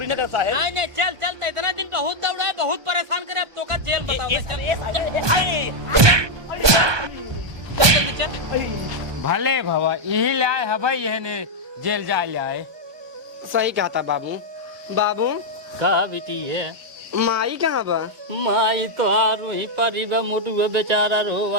न कर साहेब। नहीं नहीं चल चल। तो इतना दिन बहुत दौड़ा है, बहुत परेशान करे। अब तो का जेल बताओ। जल्दी चल। भले भवा यही ले आए हवाई यह ने जेल जा ले आए। सही कहा था बाबू। बाबू कहा बेटी है माई कहाँ बा? माई तो वही परी बा, मुटुआ बेचारा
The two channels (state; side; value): late; left; 1.2 ms